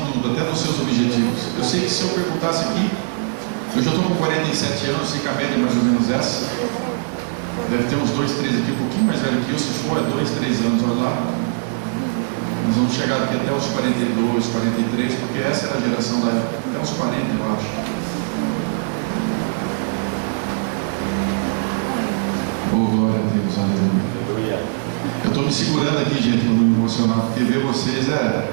tudo, até nos seus objetivos. Eu sei que se eu perguntasse aqui, eu já estou com 47 anos, sei que a média é mais ou menos essa, deve ter uns 2, 3 aqui, um pouquinho mais velho que eu, se for é 2, 3 anos, olha lá. Nós vamos chegar aqui até os 42, 43, porque essa era a geração da época, até os 40 eu acho. Oh, glória a Deus, aleluia. Eu estou me segurando aqui, gente, para não me emocionar, porque ver vocês é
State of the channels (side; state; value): left; silent; digital silence